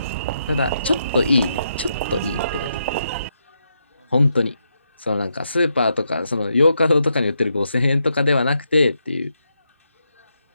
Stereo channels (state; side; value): inverted; both; correlation -0.81